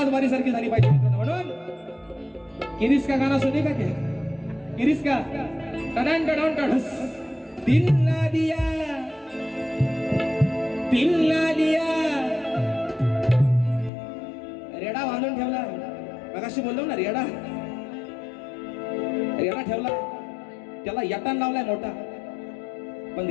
बारी सारखी झाली पाहिजे मित्रांनो. म्हणून किरीस का गाणं सुने का क्या, किरीस का टडन टडन टडस. दिल ना दिया रेडा बांधून ठेवला. मगाशी बोललो ना रेडा ठेवला, त्याला यटान लावलाय मोठा. पण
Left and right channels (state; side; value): drops out; right; at 13.9 s